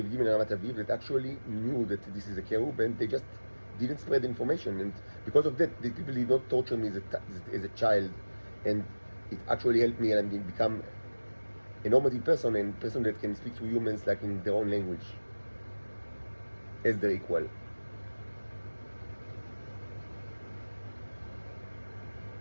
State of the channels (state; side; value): inverted; both; correlation -1.00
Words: Aviv and Ramat Aviv that actually knew that this is a cherub, and they just didn't spread information. And because of that, the people did not torture me as a child, and it actually helped me and become a normative person and person that can speak to humans like in their own language as their equal.